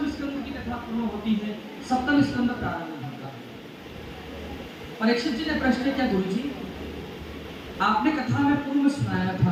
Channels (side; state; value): both; identical; correlation 1.00